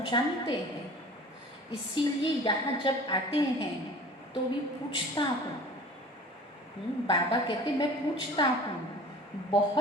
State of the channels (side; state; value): both; normal; correlation 0.43